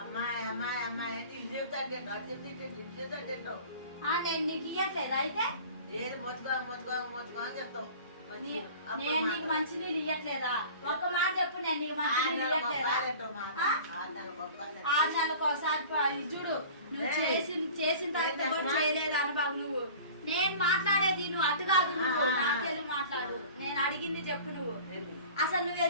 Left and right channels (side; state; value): both; inverted; correlation -0.42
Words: నేను నీకు ఇయ్యట్లేదు అయితే? నేను నీకు మంచినీళ్ళు ఇయ్యట్లేదా? ఒక మాట చెప్పు, నేను నీకు మంచినీళ్ళు ఇయ్యట్లేదా? 6 నెలలకు ఒకసారి చూడు. నువ్వు చేసిన తర్వాత కూడా చేయలేదు అనుభవం. నువ్వు నేను మాట్లాడేది నువ్వు అటు కాదు, నువ్వు నాకెళ్ళి మాట్లాడు. నేను అడిగింది చెప్పు. నువ్వు అసలు నువ్వు